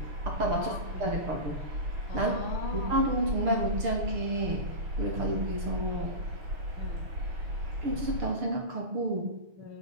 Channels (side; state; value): left; late; 6.7 ms